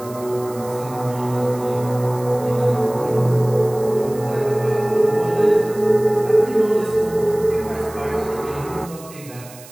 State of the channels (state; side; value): noise; right; hiss, 19 dB below the sound